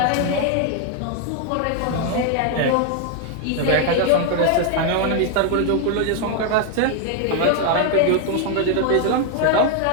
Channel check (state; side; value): different; both; correlation 0.00